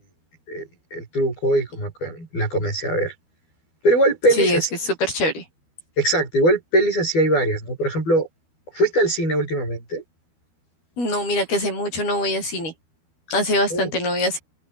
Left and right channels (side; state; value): right; late; 12 ms